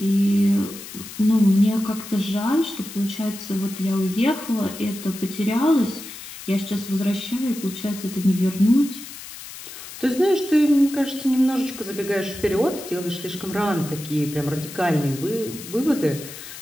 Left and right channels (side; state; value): left; noise; hiss, 13 dB below the sound